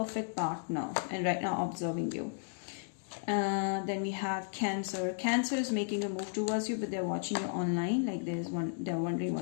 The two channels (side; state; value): right; silent; digital silence